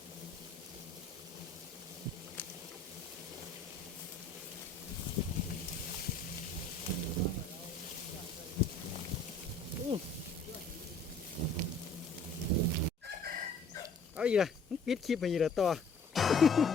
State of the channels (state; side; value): quieter; right; 3.4 dB